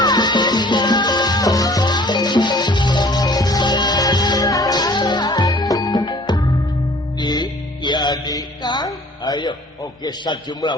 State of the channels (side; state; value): both; normal; correlation 0.52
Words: di Kang ayo oke sajumlah